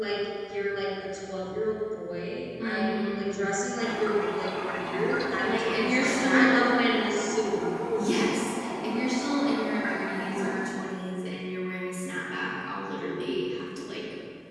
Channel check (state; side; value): identical; both; correlation 1.00